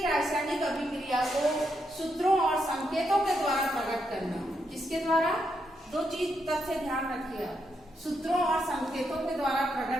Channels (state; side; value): normal; both; correlation 0.80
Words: रासायनिक अभिक्रिया को सूत्रों और संकेतों के द्वारा प्रकट करना, किसके द्वारा, दो चीज तथ्य ध्यान रखिए, सूत्रों और संकेतों के द्वारा